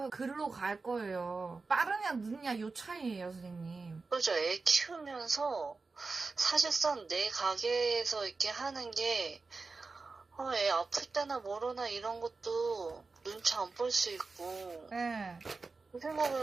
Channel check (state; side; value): quieter; left; 4.0 dB